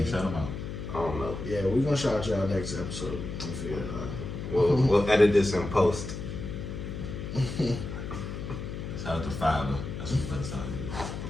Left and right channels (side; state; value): left; noise; hum, 7 dB below the sound